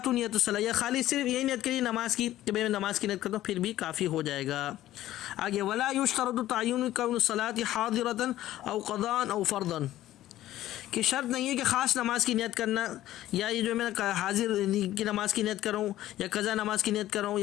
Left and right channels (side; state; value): right; quieter; 14.2 dB